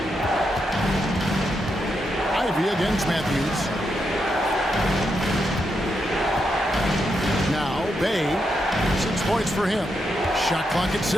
Ivy against Matthews. Now Bay. 6 points for him. Shot clock at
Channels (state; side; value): normal; both; correlation 0.83